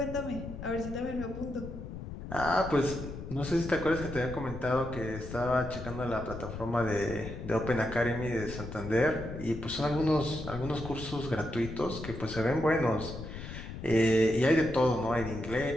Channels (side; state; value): left; noise; rumble, 9 dB below the sound